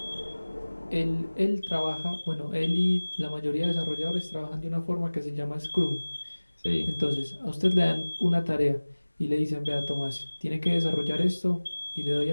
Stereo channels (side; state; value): both; inverted; correlation -1.00